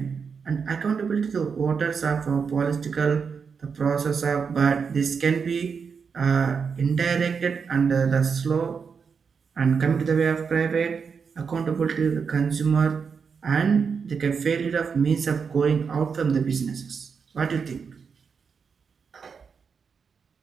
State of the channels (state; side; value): quieter; left; 5.9 dB